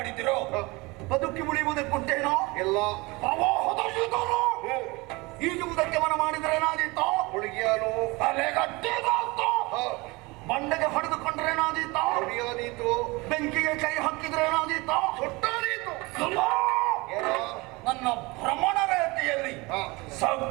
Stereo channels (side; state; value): left; quieter; 24.3 dB